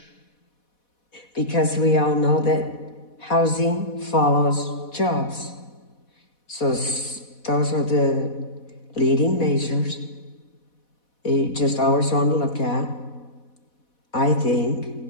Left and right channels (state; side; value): late; right; 4.1 ms